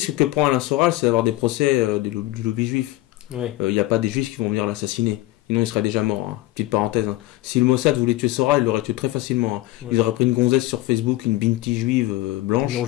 que prend Alain Soral, c'est d'avoir des procès du lobby juif. Il n'y a pas des juifs qui vont venir l'assassiner. Sinon, il serait déjà mort. Hein. Petite parenthèse. Hein. Si le Mossad voulait tuer Soral, il l'aurait tué très facilement. Hein. Ils auraient pris une gonzesse sur Facebook, une binti juive blanche. Ils l'ont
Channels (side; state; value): right; quieter; 17.4 dB